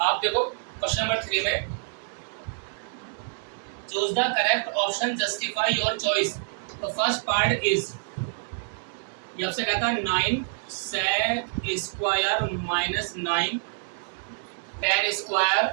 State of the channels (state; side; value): silent; left; digital silence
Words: देखो क्वेश्चन नंबर 3 में choose the correct option justify your choice. तो फर्स्ट पार्ट इज, ये आपसे कहता है 9 sec square minus 9 tan square.